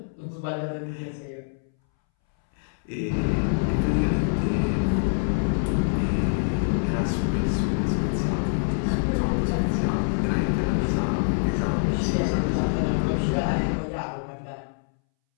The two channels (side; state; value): right; silent; 62 dB below the other